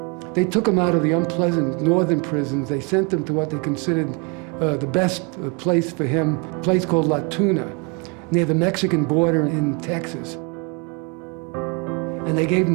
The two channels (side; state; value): left; quieter; 32.8 dB